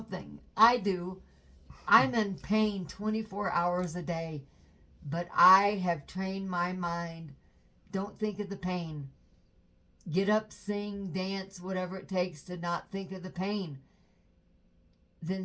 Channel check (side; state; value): both; identical; correlation 1.00